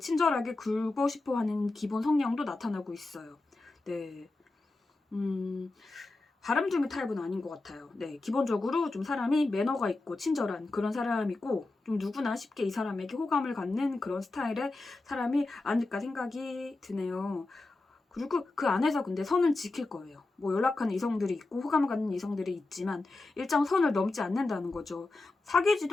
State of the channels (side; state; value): right; quieter; 3.2 dB